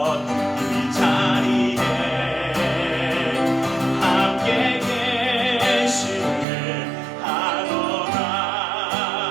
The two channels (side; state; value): left; drops out; at 6.5 s